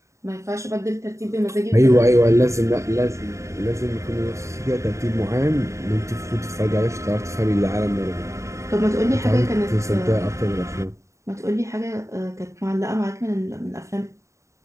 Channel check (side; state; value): left; late; 0.14 ms